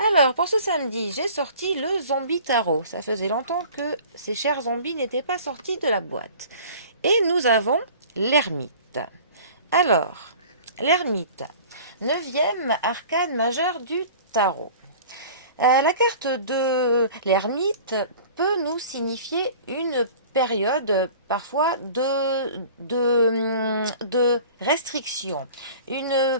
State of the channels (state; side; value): inverted; both; correlation -0.44